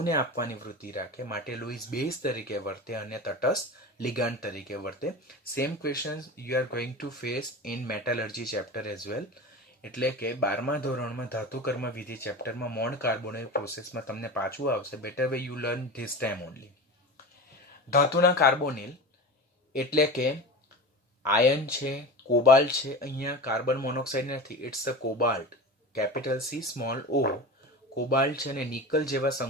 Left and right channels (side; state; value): both; normal; correlation 0.29